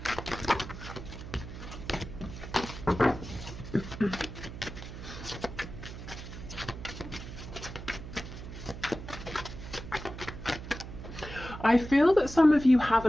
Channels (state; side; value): noise; right; hum, 11 dB below the sound